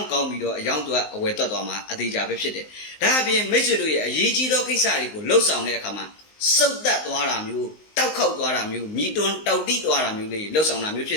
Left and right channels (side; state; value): right; late; 19 ms